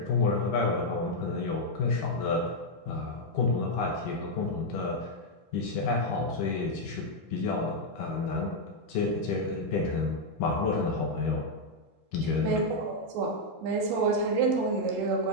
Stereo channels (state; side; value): normal; both; correlation -0.01